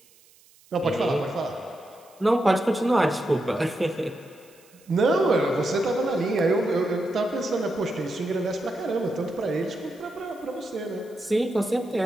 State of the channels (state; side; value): noise; right; hiss, 28 dB below the sound